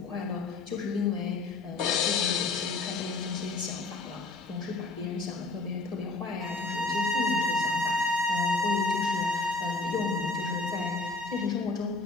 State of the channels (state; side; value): quieter; right; 3.4 dB